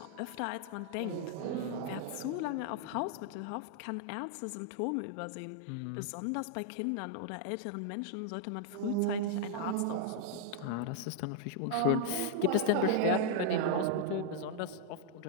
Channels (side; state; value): both; different; correlation 0.00